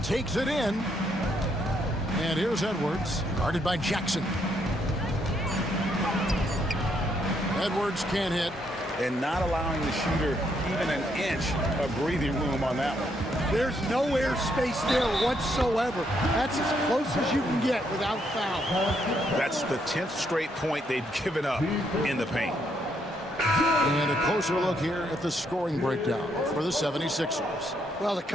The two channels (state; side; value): normal; both; correlation 0.74